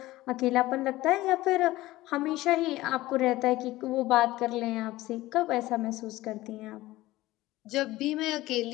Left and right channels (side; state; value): right; quieter; 17.5 dB